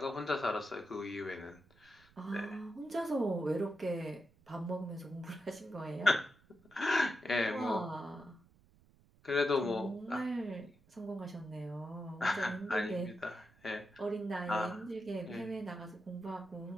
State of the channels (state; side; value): noise; right; rumble, 29 dB below the sound